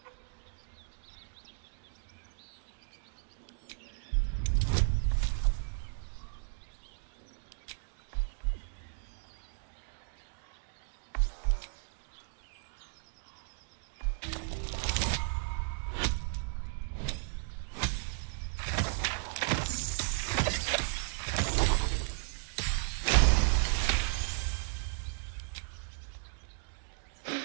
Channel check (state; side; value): silent; left; digital silence